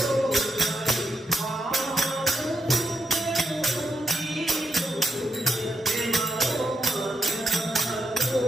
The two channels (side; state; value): both; normal; correlation 0.84